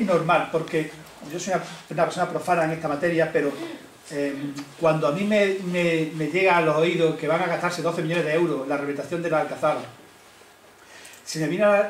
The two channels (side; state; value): both; identical; correlation 1.00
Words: normal, porque yo soy una persona profana en esta materia, pero cuando a mí me llega a los oídos que van a gastarse 12 millones de euros en la rehabilitación de la Alcazaba, se me viene